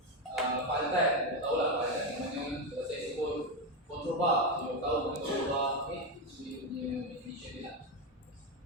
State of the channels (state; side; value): normal; both; correlation 0.09